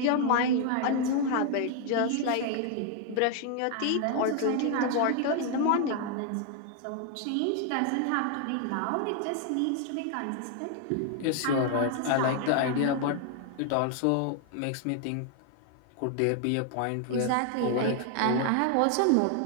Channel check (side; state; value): both; different; correlation 0.00